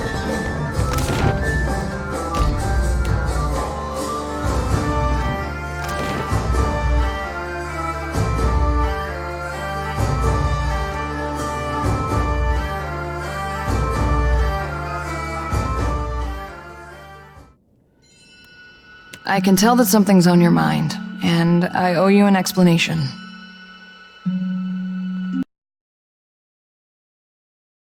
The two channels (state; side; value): identical; both; correlation 1.00